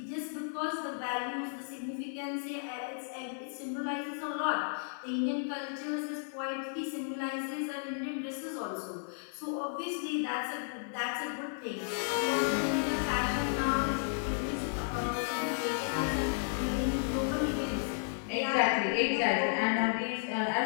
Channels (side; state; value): right; silent; 55 dB below the other